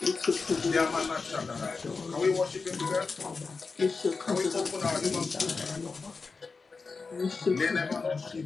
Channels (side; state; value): right; quieter; 4.4 dB